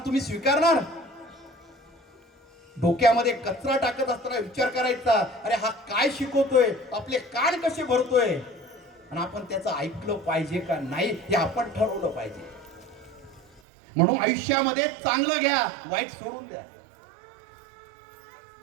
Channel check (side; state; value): left; drops out; at 13.6 s